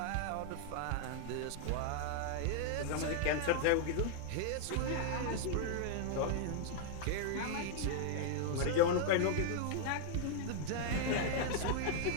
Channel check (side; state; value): both; different; correlation 0.00